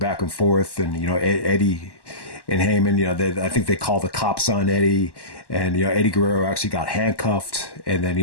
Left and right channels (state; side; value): late; right; 1.1 ms